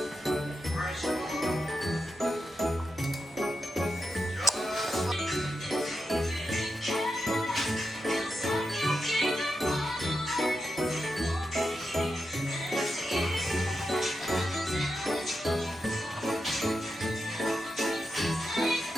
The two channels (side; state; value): both; normal; correlation 0.87